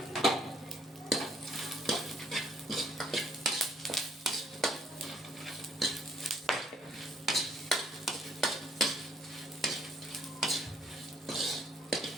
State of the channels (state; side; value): normal; both; correlation 0.65